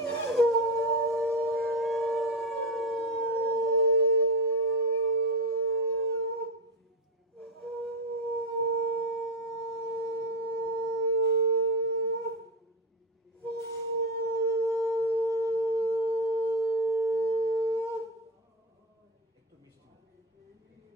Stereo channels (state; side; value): normal; both; correlation 0.15